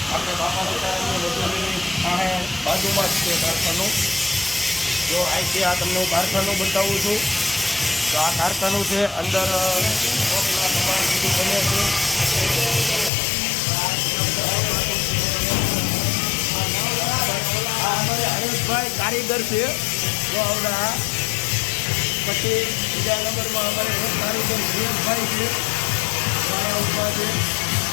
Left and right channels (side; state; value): right; drops out; at 13.1 s